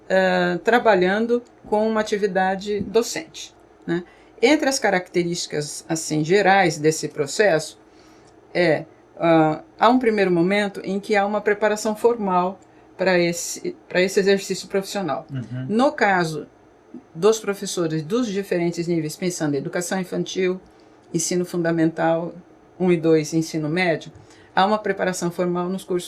trabalhando com uma atividade docente. Né? Entre as características assim, gerais desse processo, há um primeiro momento em que há uma preparação formal para esse exercício profissional. No caso dos professores dos diferentes níveis, pensando em educação infantil, ensino fundamental 1 e 2, ensino médio, há uma preparação formal nos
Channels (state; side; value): identical; both; correlation 1.00